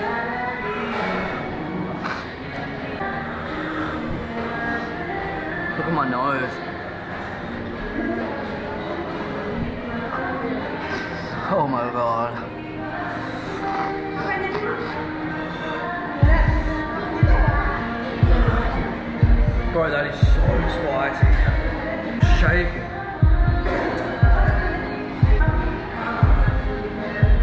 Look at my nose. Oh my god. Bro, that is so spicy. Shake it.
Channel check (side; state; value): both; identical; correlation 1.00